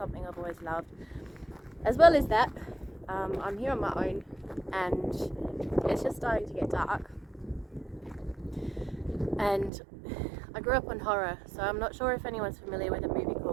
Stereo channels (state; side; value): drops out; left; at 9.7 s